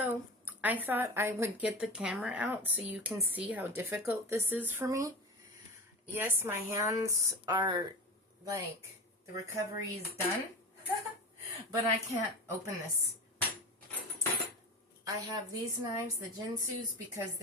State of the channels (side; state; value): both; normal; correlation 0.28